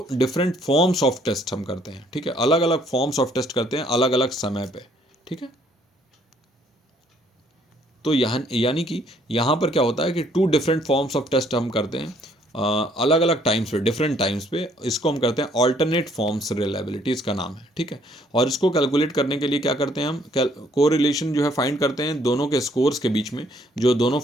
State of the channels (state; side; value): normal; both; correlation 0.64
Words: डिफरेंट फॉर्म्स ऑफ टेस्ट हम करते हैं, ठीक है। अलग अलग फॉर्म्स ऑफ टेस्ट करते हैं अलग अलग समय पे, ठीक है। तो यहाँ यानी कि यहाँ पर क्या होता है कि 2 डिफरेंट फॉर्म्स ऑफ टेस्ट हम करते हैं अलग अलग टाइम्स पे, डिफरेंट टाइम्स पे। इसको हम करते हैं ऑल्टरनेट फॉर्म्स रिलायबिलिटी, इसका नाम है, ठीक है। और इसको कैलकुलेट करने के लिए क्या करते हैं हम, कोरिलेशन जो है फाइंड करते हैं दोनों के स्कोर्स के बीच में। जो दोनों